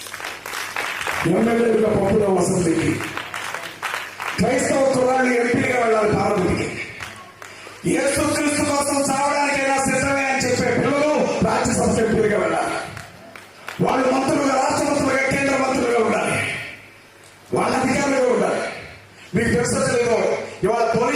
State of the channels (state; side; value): identical; both; correlation 1.00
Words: ఎమ్మెల్యేలుగా పంపుదాం అసెంబ్లీకి. క్రైస్తవ కుర్రాన్ని ఎంపీగా వెళ్ళాలి పార్లమెంట్కి. యేసుక్రీస్తు కోసం చావడానికైనా సిద్ధమే అని చెప్పే పిల్లలు రాజ్యసభ ఎంపీలుగా వెళ్ళాలి. వాళ్ళు మంత్రులుగా, రాష్ట్ర మంత్రులుగా, కేంద్ర మంత్రులుగా ఉండాలి. వాళ్ళ అధికారులుగా ఉండాలి. మీకు తెలుసో తెలియదు, ఇవాళ